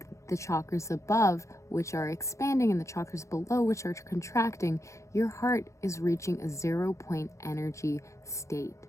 the chakras above, which are expanding, and the chakras below, which are contracting, your heart is reaching a 0-point energy state.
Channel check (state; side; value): late; right; 0.15 ms